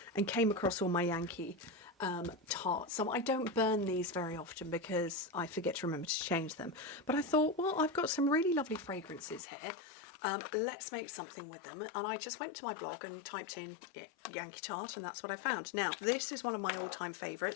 and came across all my Yankee tarts. So I don't burn these very often because I forget to remember to change them. But I thought, well, I've got some really lovely fragrances here. Let's make something with them. And I just went to my blog and typed in Yankee tart, and that's what I found. Now, this is one of my all-time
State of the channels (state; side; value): drops out; right; at 9.5 s